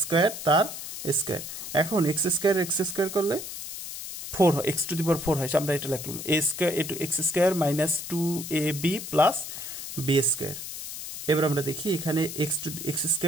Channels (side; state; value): left; noise; hiss, 8 dB below the sound